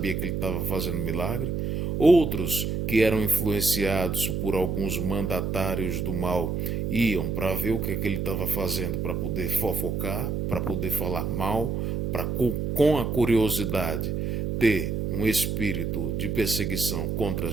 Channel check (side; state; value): right; noise; hum, 1 dB below the sound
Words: que ele estava fazendo milagre. Outros, que eram influenciados por alguns mandatários do mal, iam para ver o que, é que ele estava fazendo, para poder fofocar, para poder falar mal, para com a curiosidade ter um espírito de perseguição contra